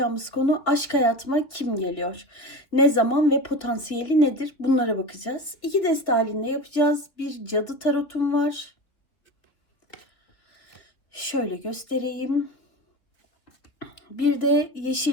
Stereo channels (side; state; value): right; late; 2.9 ms